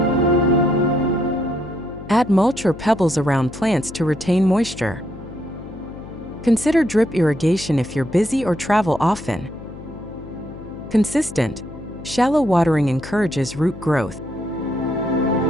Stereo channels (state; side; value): noise; left; hum, 14 dB below the sound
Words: Add mulch or pebbles around plants to retain moisture. Consider drip irrigation if you're busy or travel often. Consistent, shallow watering encourages root growth.